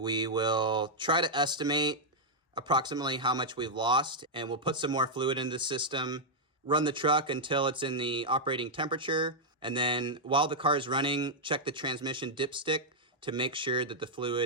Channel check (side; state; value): both; normal; correlation -0.03